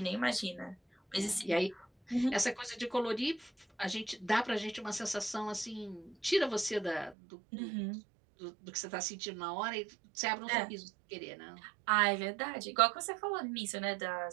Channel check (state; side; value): drops out; left; at 7.2 s